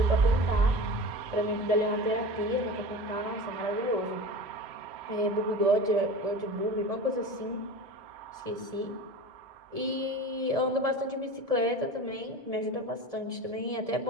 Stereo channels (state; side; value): late; left; 1.7 ms